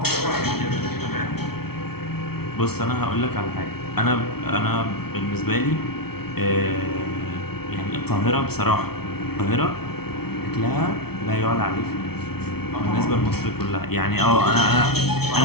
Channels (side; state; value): right; late; 0.95 ms